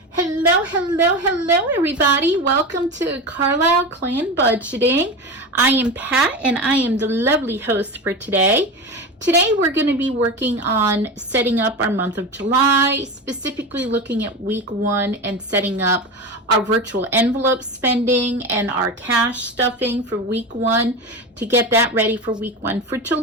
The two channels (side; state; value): both; normal; correlation 0.24